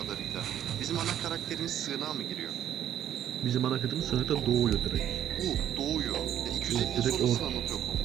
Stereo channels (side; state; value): left; quieter; 10.6 dB